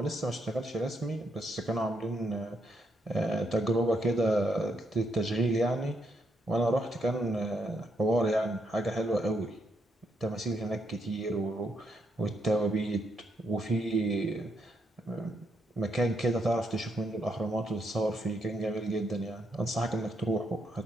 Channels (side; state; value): both; normal; correlation 0.77